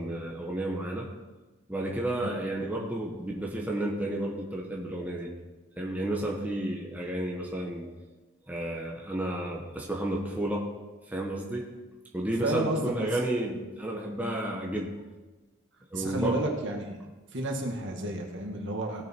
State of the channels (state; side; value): normal; both; correlation 0.61